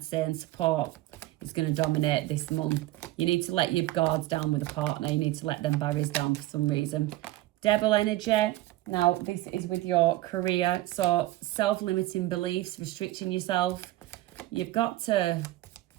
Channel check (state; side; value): quieter; left; 16.7 dB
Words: say, and support is going to dominate this month. You need to let your guards down with a partner. You need to let them barriers down for some reason. Devil energy. Now, this is with your career. So, self-limiting beliefs, restricting yourself. You